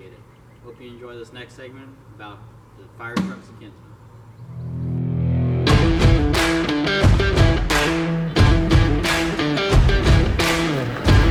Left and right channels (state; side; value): identical; both; correlation 1.00